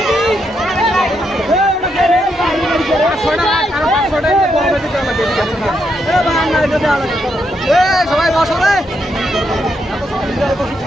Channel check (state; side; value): normal; both; correlation 0.79